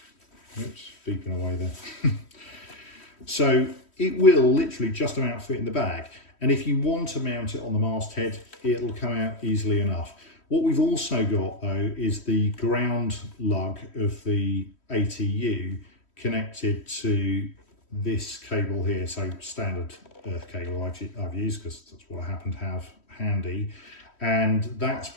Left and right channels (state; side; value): late; right; 3.1 ms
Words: oops, beeping away there. So it will literally just about fit in the bag. And if you want to mount it on the masthead, it'll come out easily enough. What we've also got though is the ground lug of the ATU connected to this cable here. So standard earth cable I've used because that's what I happen to have handy. And that's